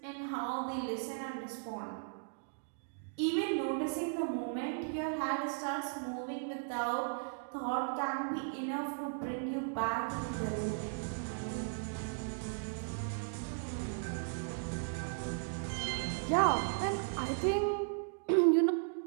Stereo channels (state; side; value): silent; left; digital silence